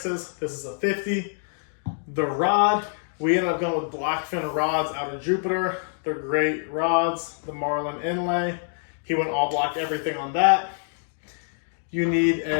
This is a 50. The rod, we ended up going with blackfin rods out of Jupiter. They're great rods. The Marlin inlay, he went all black, everything on that. You need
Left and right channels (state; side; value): silent; right; digital silence